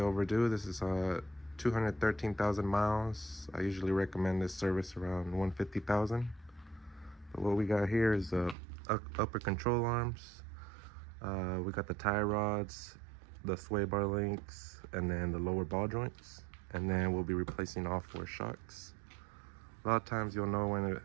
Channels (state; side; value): drops out; left; at 8.6 s